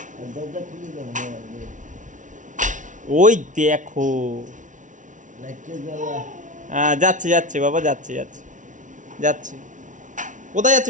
দরজা খুলে দাও, হ্যাঁ, ওই দেখো। লাইটটা জ্বালা। হ্যাঁ যাচ্ছে যাচ্ছে বাবা, যাচ্ছে যাচ্ছে যাচ্ছে। কোথায়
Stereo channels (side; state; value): left; late; 0.37 ms